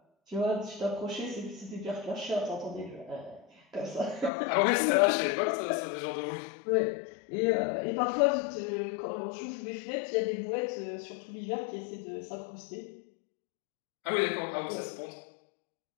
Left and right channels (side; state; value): right; drops out; at 4.3 s